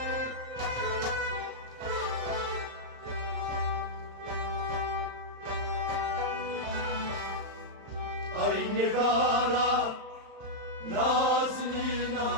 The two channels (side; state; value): left; late; 35 ms